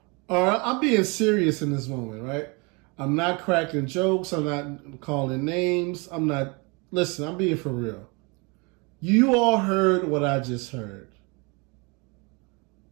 right, I'm being serious in this moment, right? I'm not cracking jokes. I'm not calling names. Listen, I'm being for real. You all heard what I just heard.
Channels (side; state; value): left; quieter; 29.6 dB